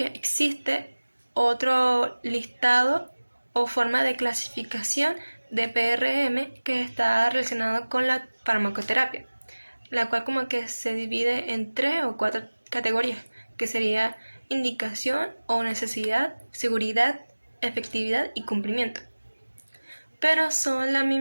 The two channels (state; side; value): inverted; both; correlation -1.00